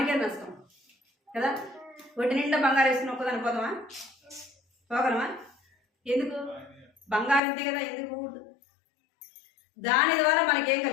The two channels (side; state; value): right; drops out; at 7.4 s